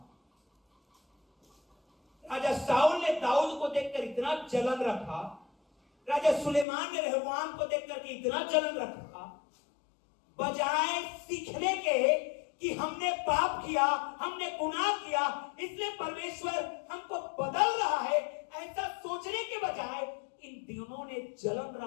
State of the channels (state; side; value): drops out; right; at 6.7 s